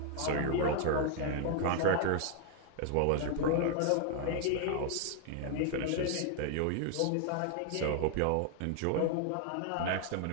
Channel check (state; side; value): different; both; correlation 0.00